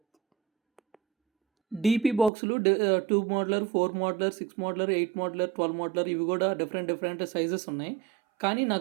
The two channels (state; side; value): drops out; left; at 2.3 s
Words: DP బాక్సులు 2 మోడ్లర్, 4 మోడ్లర్, 6 మోడ్లర్, 8 మోడ్లర్, 12 మోడ్లర్ ఇవి కూడా different sizes ఉన్నాయి. కానీ